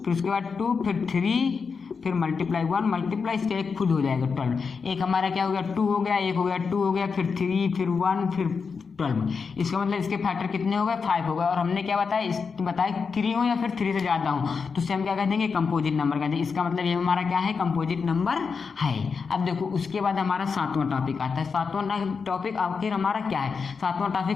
उसके बाद 2, फिर 3, फिर मल्टीप्लाई 1 मल्टीप्लाई इसका एक खुद हो जाएगा 12। एक हमारा क्या हो गया, 2 हो गया, एक हो गया 2 हो गया, फिर 3, फिर 1, फिर 12। इसका मतलब इसके फैक्टर कितने हो गए, 5 हो गए। और हमने क्या बताया 3 हो या फिर 3 से ज़्यादा हो तो उससे हम क्या कह देंगे, कंपोजिट नंबर कहते हैं। इसका मतलब ये हमारा क्या है, कंपोजिट नंबर है। अब देखो उसके बाद हमारा 7वां टॉपिक आता है। 7वां टॉपिक आखिर हमारा क्या है, 7वां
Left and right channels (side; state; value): right; quieter; 5.4 dB